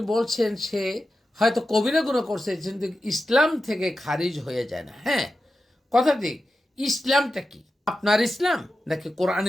বলছেন সে হয়তো কবিরা গুনাহ করছে, কিন্তু ইসলাম থেকে খারিজ হয়ে যায় না। হ্যাঁ, কথা ঠিক। ইসলামটা কি? আপনার ইসলাম নাকি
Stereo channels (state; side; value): normal; both; correlation 0.92